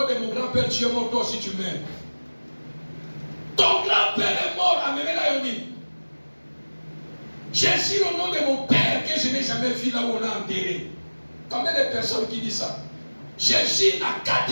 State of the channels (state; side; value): inverted; both; correlation -1.00